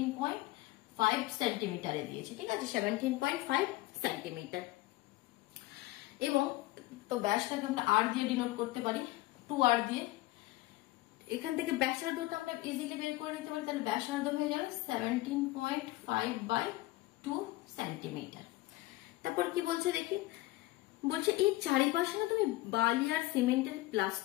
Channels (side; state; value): right; quieter; 18.5 dB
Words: সেন্টিমিটারে দিয়েছে, ঠিক আছে? 17.5 সেন্টিমিটার। এবং তো ব্যাসটাকে আমরা আর দিয়ে ডিনোট করতে পারি, 2r দিয়ে। এখান থেকে ব্যাসার্ধটা আমরা ইজিলি বের করে নিতে পারি, তাহলে ব্যাসার্ধ হয়ে যাবে 17.5/2 সেন্টিমিটার। তারপর কি বলছে দেখি, বলছে এই চারিপাশে না তুমি বালি আর সিমেন্টের